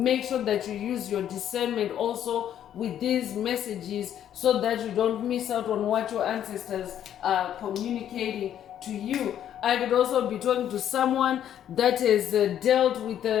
sure that you use your discernment also with these messages, so that you don't miss out on what your ancestors are communicating to you. I could also be talking to someone that has dealt with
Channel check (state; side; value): quieter; right; 10.4 dB